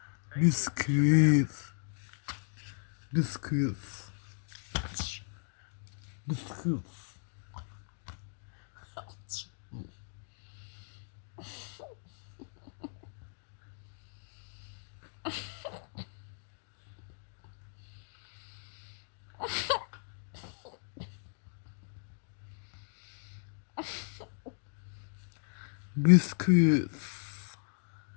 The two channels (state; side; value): silent; right; digital silence